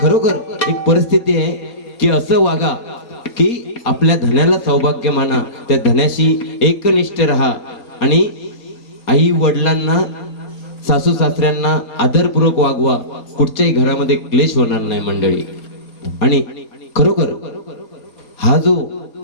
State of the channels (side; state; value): right; late; 4.2 ms